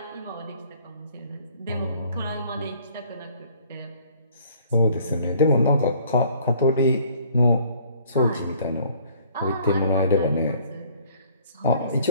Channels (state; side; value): inverted; both; correlation -0.57